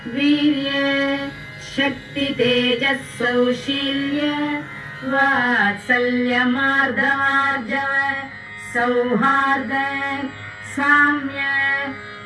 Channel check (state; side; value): identical; both; correlation 1.00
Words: वीर्य शक्ति तेजः सौशील्य वात्सल्य मार्दवार्जव सौहार्द साम्य